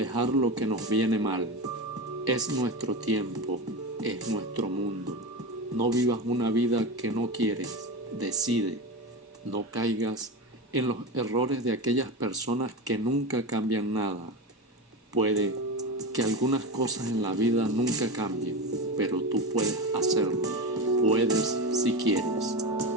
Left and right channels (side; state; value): both; normal; correlation 0.21